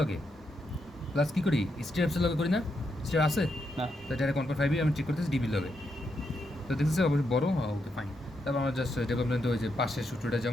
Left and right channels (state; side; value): normal; both; correlation 0.81